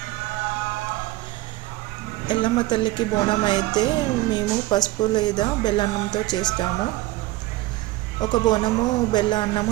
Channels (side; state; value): left; quieter; 17.7 dB